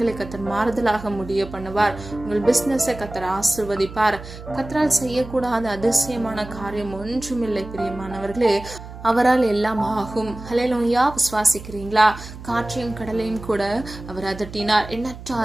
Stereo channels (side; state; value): right; noise; hum, 14 dB below the sound